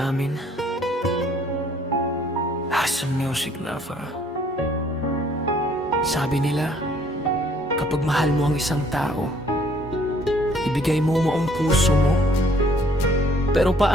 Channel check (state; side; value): normal; both; correlation 0.61